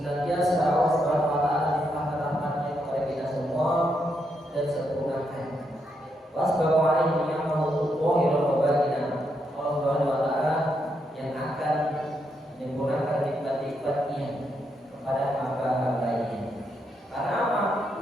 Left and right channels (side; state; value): both; normal; correlation 0.80